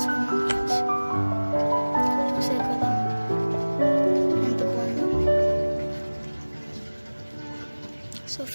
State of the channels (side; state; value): both; inverted; correlation -1.00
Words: ఫ్రెండ్స్. చూసారు కదా ఎంత బాగుందో. So